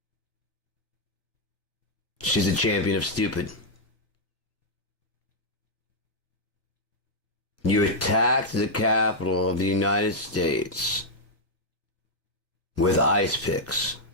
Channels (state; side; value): normal; both; correlation -0.04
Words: She's a champion of stupid. You attacked the Capitol of the United States with ice picks.